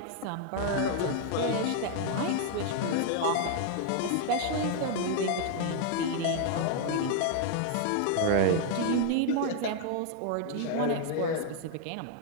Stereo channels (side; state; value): both; different; correlation 0.00